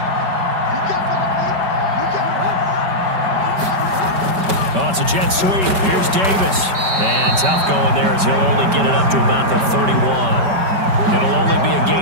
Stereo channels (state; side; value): late; left; 5.2 ms